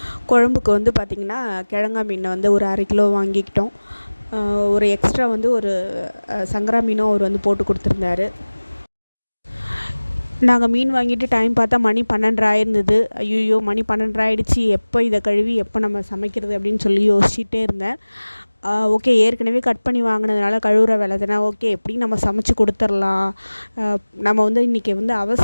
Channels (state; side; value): inverted; both; correlation -1.00